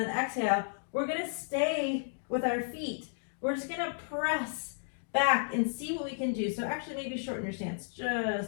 exhale, we're gonna stay with our feet. We're just gonna press back and see what we can do. So actually maybe shorten your stance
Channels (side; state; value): right; silent; digital silence